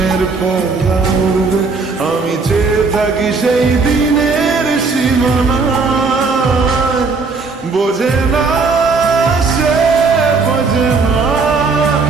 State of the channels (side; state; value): left; quieter; 4.3 dB